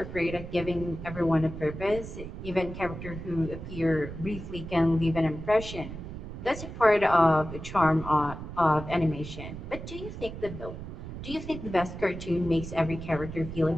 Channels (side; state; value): right; noise; rumble, 10 dB below the sound